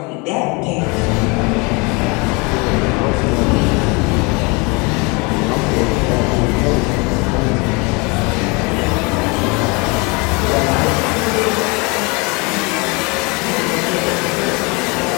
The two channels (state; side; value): quieter; right; 28.8 dB